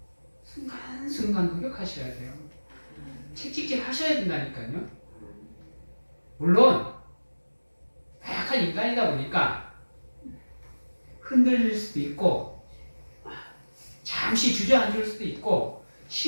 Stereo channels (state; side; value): inverted; both; correlation -1.00